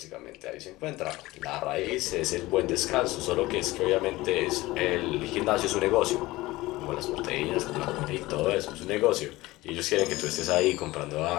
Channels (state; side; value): quieter; right; 19.2 dB